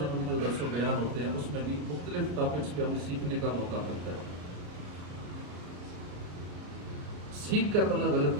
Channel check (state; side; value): late; left; 34 ms